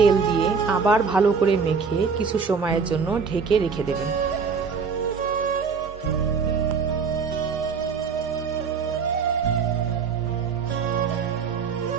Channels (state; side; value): quieter; left; 5.6 dB